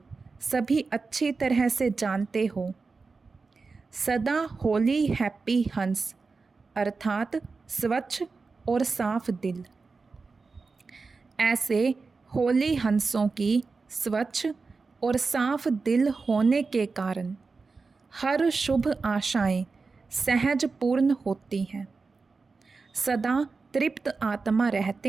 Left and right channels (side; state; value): left; quieter; 4.3 dB